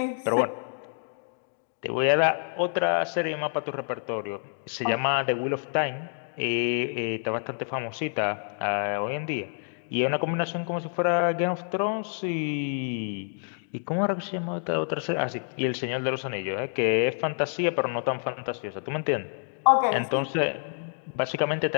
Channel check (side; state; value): right; silent; digital silence